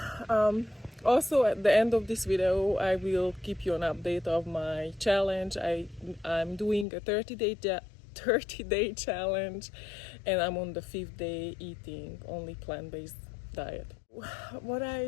also at the end of this video, I will keep you an update of my challenge. I'm doing a 30-day challenge, and I'm on the 5th day eating only plant-based diet. What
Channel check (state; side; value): drops out; right; at 6.9 s